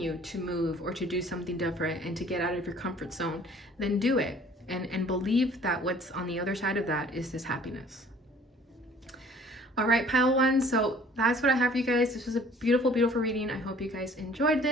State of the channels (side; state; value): both; normal; correlation 0.53